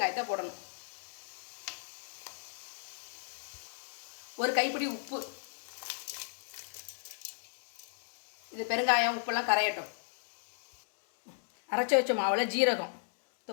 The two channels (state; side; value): silent; right; digital silence